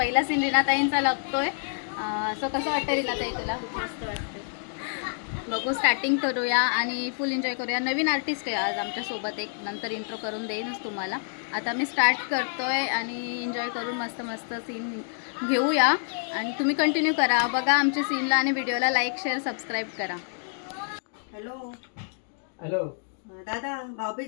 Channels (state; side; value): silent; right; digital silence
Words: सीन रीनाताईंचा लागतोय। सो कसं वाटतं रीनाताई तुला? मस्त वाटतं। बघू, स्टार्टिंग करूया आणि फुल एन्जॉय करूया। नवीन आर्टिस्ट आहे आज आमच्यासोबत, एक नंतर इंट्रो करून देईनच तुम्हाला। आता मी स्टार्ट करतोय आणि एन्जॉय करून मस्त मस्त सीन घेऊया आणि तुम्ही कंटिन्यू करा, बघा आमच्या सीनला आणि व्हिडिओला लाईक शेअर सबस्क्राईब करा। हॅलो हॅलो दादा,